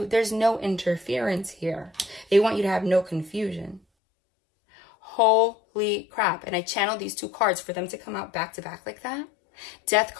There's no interference here. They want you to have no confusion. Holy crap. And I channeled these 2 cards for them to come out back to back like that. Death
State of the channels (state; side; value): drops out; right; at 3.8 s